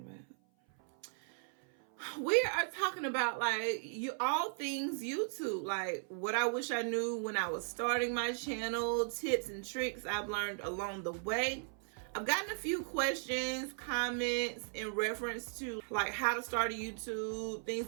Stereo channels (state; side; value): silent; left; 53 dB below the other